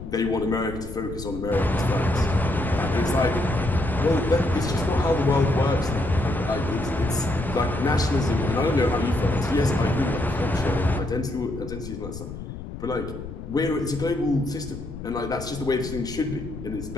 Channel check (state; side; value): noise; left; rumble, 10 dB below the sound